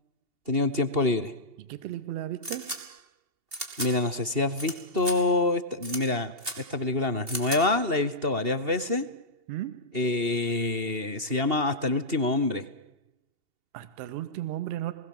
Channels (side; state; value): left; late; 2.7 ms